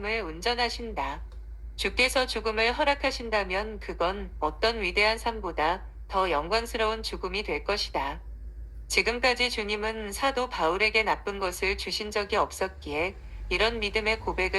운전하신다. 주께서 죽음을 허락하신다면 그건 어떤 위대한 삶보다 더 영광스러운 죽음이 될 것이다. 지금까지 주님은 사도 바울에게 나쁜 것을 주신 적이 없었기에 이런 믿음의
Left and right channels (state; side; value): identical; both; correlation 1.00